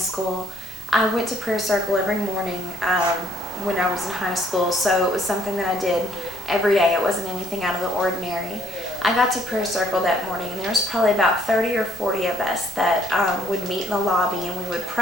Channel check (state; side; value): noise; left; rumble, 21 dB below the sound